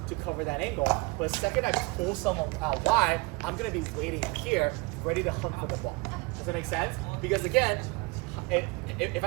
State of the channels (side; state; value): left; quieter; 26.6 dB